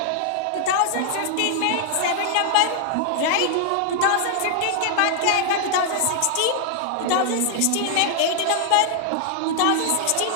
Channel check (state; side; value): different; both; correlation -0.01